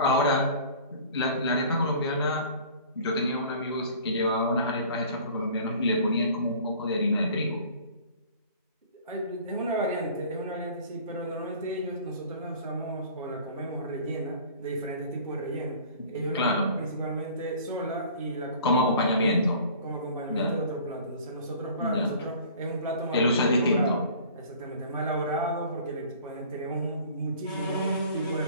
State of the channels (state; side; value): inverted; both; correlation -0.47